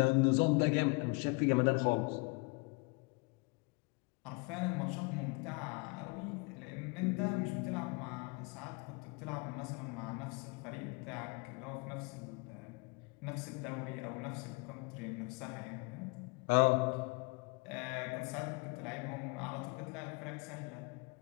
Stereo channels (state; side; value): quieter; right; 29.6 dB